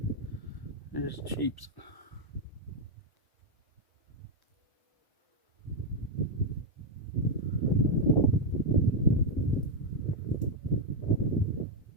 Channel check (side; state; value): right; late; 1.1 ms